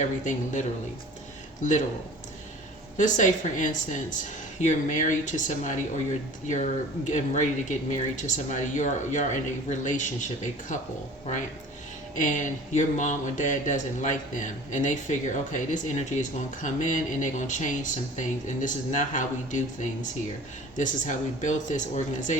literal. Let's say, for instance, you're married to somebody, or you're getting ready to get married to somebody. You're in a relationship, a couple, right? And your mom or dad doesn't like them, and they figure, okay, this energy is going to come in and they're going to change some things, and this is not how we do things here. This is how we built this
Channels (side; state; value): both; normal; correlation 0.44